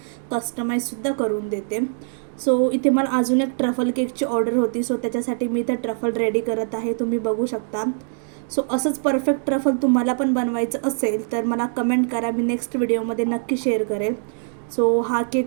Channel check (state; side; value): silent; left; 64 dB below the other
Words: कस्टमाइजसुद्धा करून देते. सो इथे मला अजून एक ट्रफल केकची ऑर्डर होती. सो त्याच्यासाठी मी इथं ट्रफल रेडी करत आहे, तुम्ही बघू शकता. सो असंच परफेक्ट ट्रफल तुम्हाला पण बनवायचं असेल तर मला कमेंट करा, मी नेक्स्ट व्हिडिओमध्ये नक्की शेअर करेल. सो हा